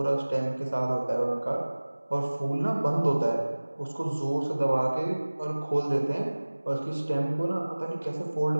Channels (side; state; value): both; inverted; correlation -1.00